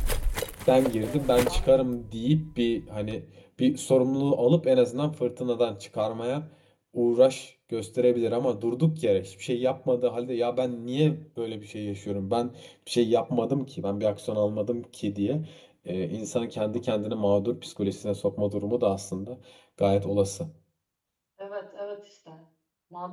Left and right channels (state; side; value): identical; both; correlation 1.00